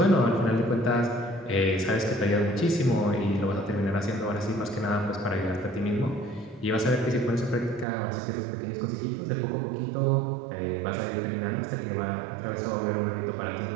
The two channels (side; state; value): left; drops out; at 7.9 s